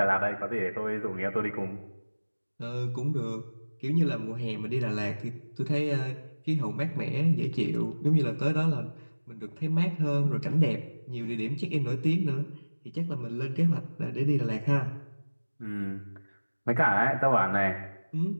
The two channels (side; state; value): both; inverted; correlation -1.00